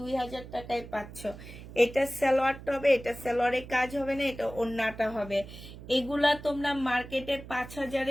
টাকায় পাচ্ছ। এটা সালোয়ারটা হবে, এটা সালোয়ারে কাজ হবে না, এটা ওড়নাটা হবে। এগুলা তোমরা মার্কেটে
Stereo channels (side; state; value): right; noise; hum, 14 dB below the sound